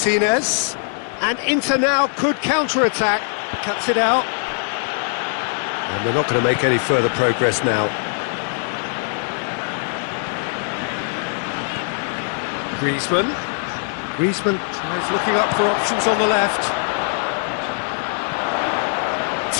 And Inter now could counter-attack. Cuts it out. And they're not going to make any further progress now. Griezmann. Griezmann tries looking up for options on the left.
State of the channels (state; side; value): silent; right; 56 dB below the other